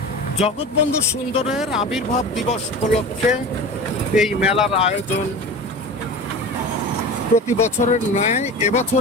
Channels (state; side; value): normal; both; correlation 0.32